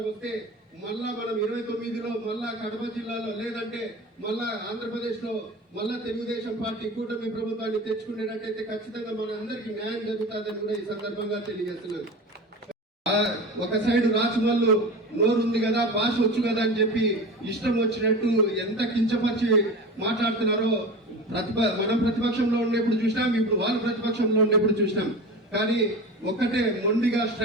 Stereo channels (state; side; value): normal; both; correlation 0.31